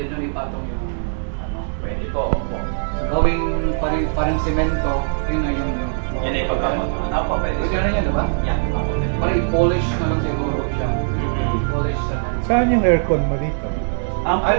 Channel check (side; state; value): left; silent; digital silence